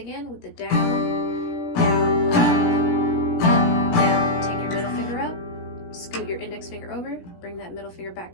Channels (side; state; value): right; late; 17 ms